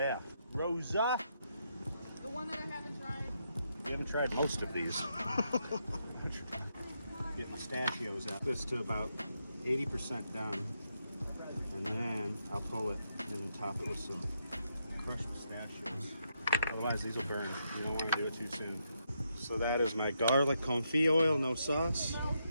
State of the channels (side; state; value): both; inverted; correlation -0.80